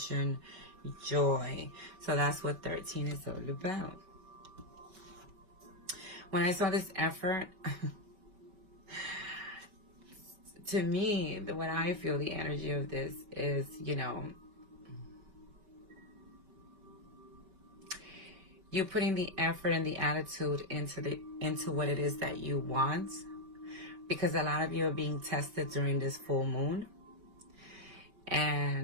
joy. So that's what 13 is all about. When I saw this effort, to me, what I feel the energy of this is, you know, you putting the effort and the attitude into what it is that you want. Because a lot of you are being tested during this full moon.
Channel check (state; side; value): late; left; 5.2 ms